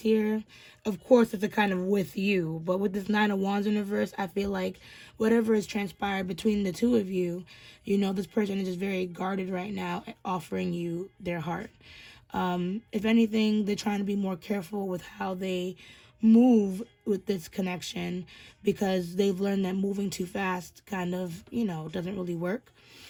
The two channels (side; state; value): both; identical; correlation 1.00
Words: here, of course, it's a kind of with you. But with this 9 of Wands in reverse, I feel like whatever has transpired between the two of you, this person is just very guarded right now at offering you their heart. If anything, they're trying to be more careful with how they move with this connection, because they've learned that moving too fast kind of, doesn't really work.